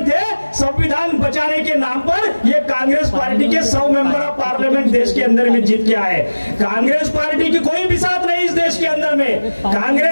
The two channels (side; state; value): both; inverted; correlation -1.00